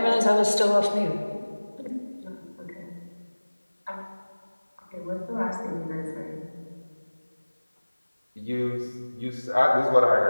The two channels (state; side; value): inverted; both; correlation -1.00